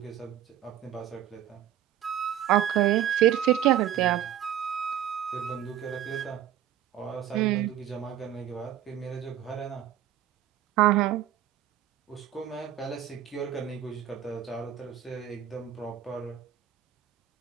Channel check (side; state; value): left; quieter; 11.3 dB